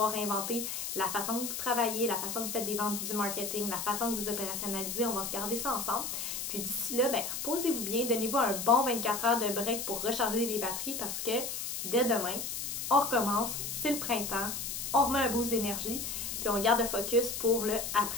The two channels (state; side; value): noise; left; hiss, 4 dB below the sound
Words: réinventer la façon que vous travaillez, la façon que vous faites des ventes, du marketing, la façon que vous opérationnalisez. On va regarder ça ensemble. Puis d'ici là, reposez-vous bien, donnez-vous un bon 24 heures de break pour recharger les batteries parce que dès demain, on recommence, c'est le printemps, on remet un boost d'énergie. Puis on garde le focus pour le